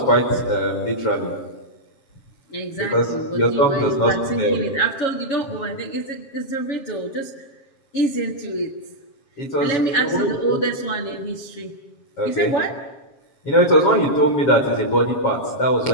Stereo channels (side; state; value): right; late; 7.4 ms